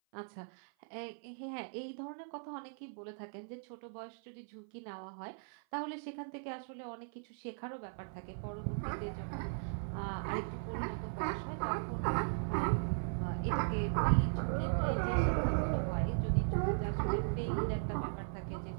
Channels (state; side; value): silent; left; 53 dB below the other